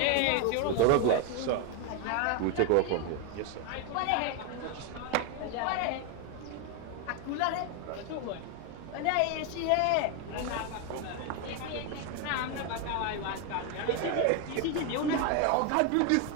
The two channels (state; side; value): different; both; correlation 0.01